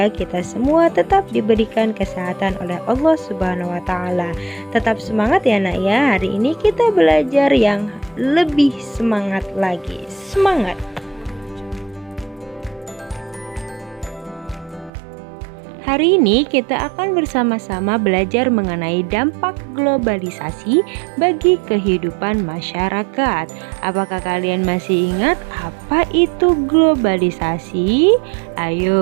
kita semua tetap diberikan kesehatan oleh Allah Subhanahu wa taala. Tetap semangat ya Nak ya. Hari ini kita belajar yang lebih semangat lagi. Semangat. Hari ini kita akan bersama-sama belajar mengenai dampak globalisasi bagi kehidupan masyarakat. Apakah kalian masih ingat apa itu globalisasi?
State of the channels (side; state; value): left; drops out; at 14.9 s